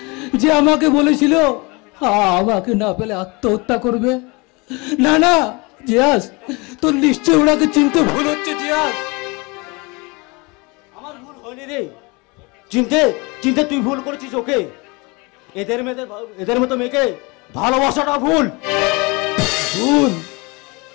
যে আমাকে বলেছিল আমাকে না পেলে আত্মহত্যা করবে? না না জিয়াস, তোর নিশ্চয় ওনাকে চিনতে ভুল হচ্ছে জিয়াস। আমার ভুল হয়নি রে, চিনতে তুই ভুল করেছিস ওকে। এদের মতো মেয়েকে ভালোবাসাটা ভুল। ভুল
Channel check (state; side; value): quieter; right; 27.3 dB